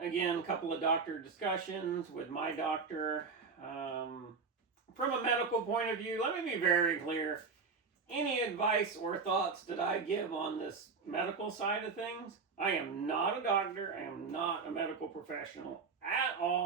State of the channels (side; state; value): left; quieter; 4.9 dB